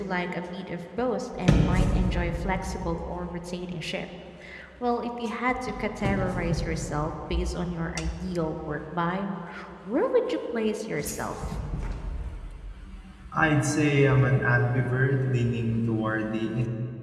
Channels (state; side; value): identical; both; correlation 1.00